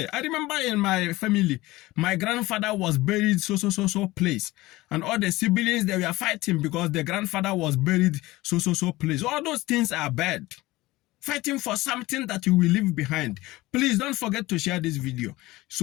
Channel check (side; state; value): right; quieter; 19.3 dB